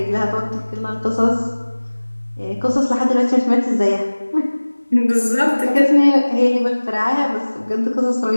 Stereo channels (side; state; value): both; inverted; correlation -1.00